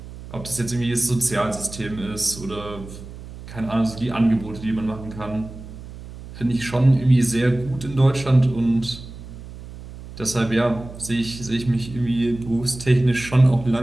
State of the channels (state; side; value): noise; right; hum, 14 dB below the sound